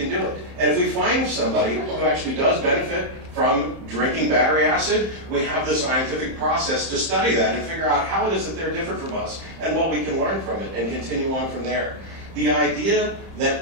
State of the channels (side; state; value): left; late; 30 ms